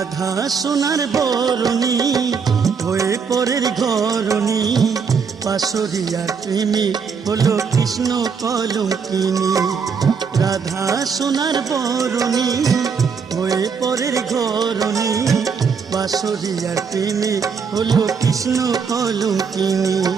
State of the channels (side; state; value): left; quieter; 5.9 dB